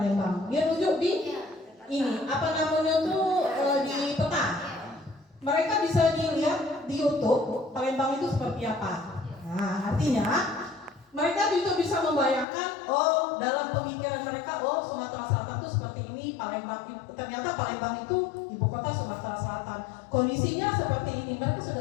Dia tunjuk di ini, apa namanya tuh di peta. Mereka bisa dilihat di YouTube Palembang itu seperti apa. Nah, artinya mereka juga bisa membayangkan, oh dalam pemikiran mereka, oh Sumatera Selatan itu seperti ini, Palembang ternyata Palembang itu ibu kota Sumatera Selatan. Kondisinya seperti ini, mereka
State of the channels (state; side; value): drops out; right; at 12.5 s